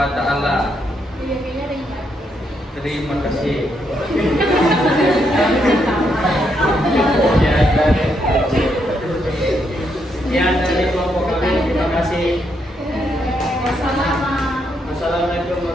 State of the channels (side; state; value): both; normal; correlation 0.78